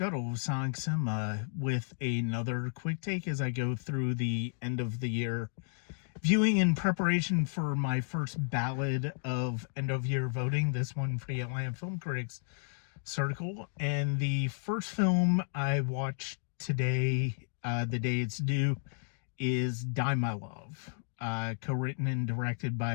of Sonic Cinema with another quick take as I go through the end of the year viewing in preparation for my first ballot of end of year voting, this one for the Atlanta Film Critics Circle. And the first film I watched today, the day it's due, is Die My Love, co-written and directed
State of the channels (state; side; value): silent; right; digital silence